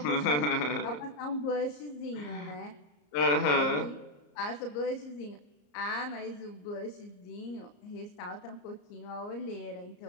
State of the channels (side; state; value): right; late; 34 ms